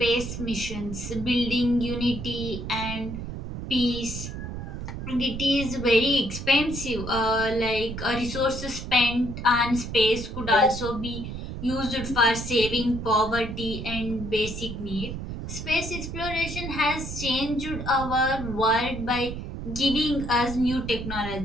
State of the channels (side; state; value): right; noise; rumble, 7 dB below the sound